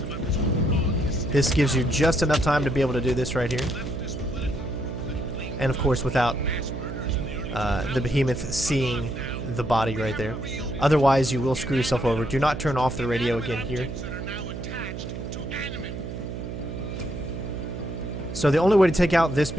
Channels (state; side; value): noise; right; hum, 7 dB below the sound